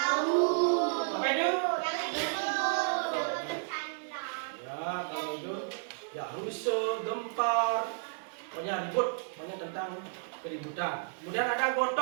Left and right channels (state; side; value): silent; left; digital silence